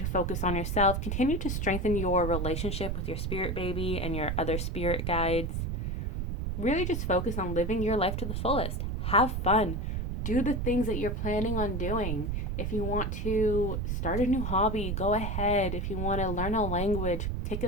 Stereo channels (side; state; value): right; noise; rumble, 1 dB below the sound